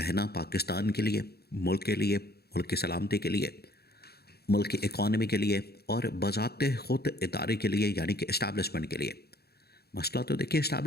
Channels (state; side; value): late; right; 0.46 ms